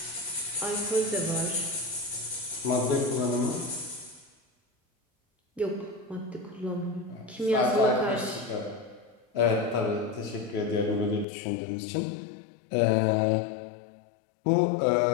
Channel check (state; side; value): drops out; right; at 11.2 s